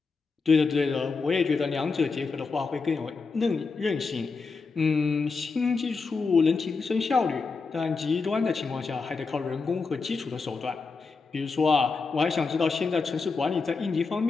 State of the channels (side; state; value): right; quieter; 4.5 dB